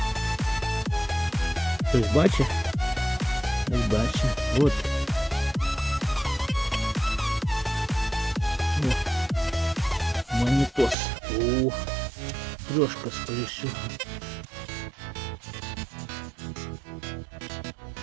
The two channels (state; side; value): drops out; left; at 11.0 s